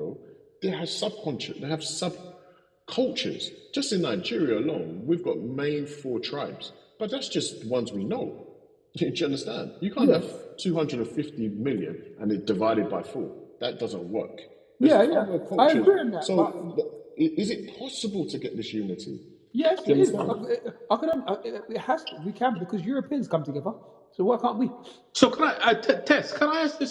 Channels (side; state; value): both; identical; correlation 1.00